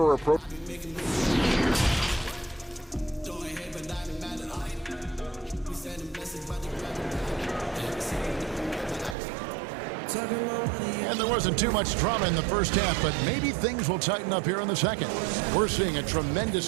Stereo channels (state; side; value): drops out; left; at 9.2 s